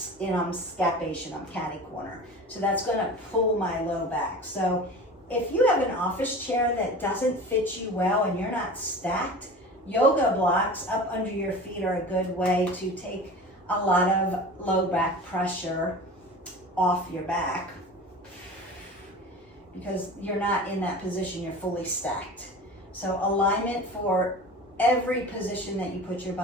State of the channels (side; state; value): both; normal; correlation 0.36